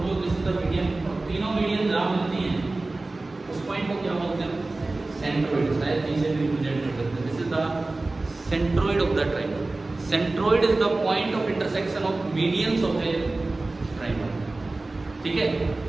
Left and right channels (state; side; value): quieter; left; 3.1 dB